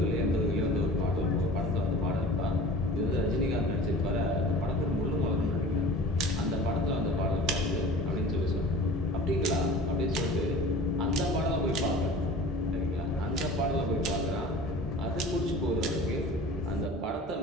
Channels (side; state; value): both; normal; correlation 0.41